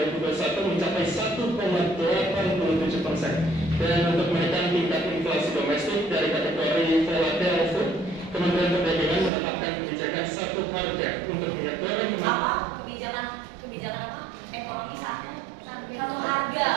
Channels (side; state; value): left; drops out; at 9.3 s